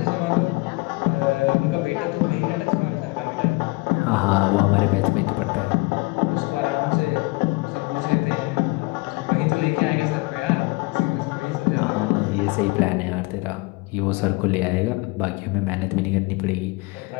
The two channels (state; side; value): quieter; right; 25.6 dB